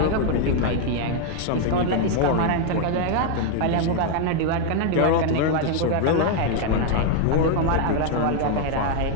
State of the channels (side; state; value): both; different; correlation 0.00